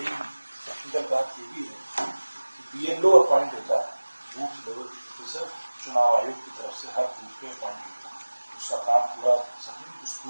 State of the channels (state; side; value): inverted; both; correlation -1.00